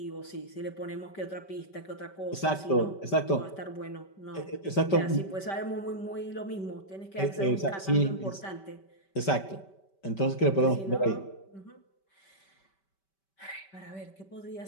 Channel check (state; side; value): late; right; 5.2 ms